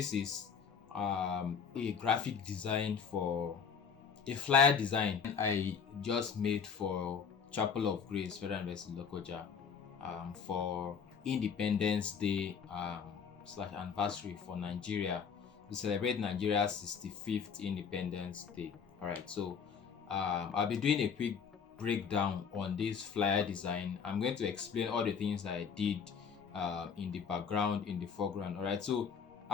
is a graphic design for a flyer design I just made for Chapel of Grace Federal University Lokoja for Independence Day slash anniversary for Nigeria to celebrate Nigeria's 65th Independence Day. All right, so I'll be doing a quick breakdown on this flyer design. I'm going to explain all the things that I did in the background, in the foreground. All right, so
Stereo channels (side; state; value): right; quieter; 6.6 dB